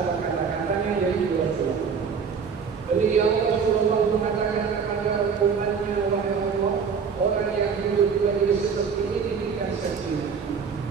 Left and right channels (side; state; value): left; quieter; 6.1 dB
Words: kata-katanya yaitu Rasulullah. Beliau Rasulullah mengatakan kepada umatnya, wahai Allah, orang yang duduk berdiri seperti ini diberikan sakinah,